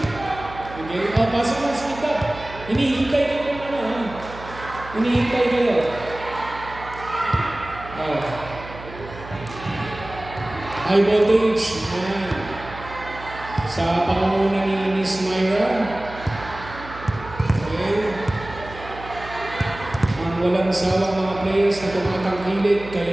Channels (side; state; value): right; noise; hum, 15 dB below the sound